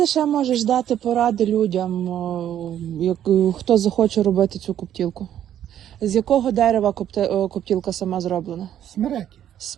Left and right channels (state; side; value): quieter; left; 10.7 dB